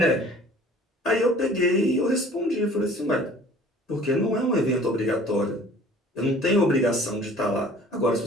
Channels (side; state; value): both; normal; correlation 0.49